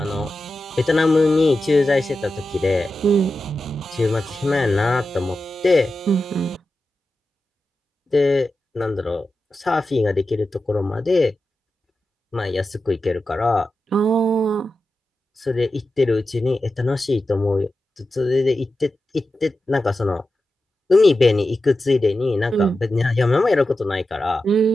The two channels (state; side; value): normal; both; correlation 0.92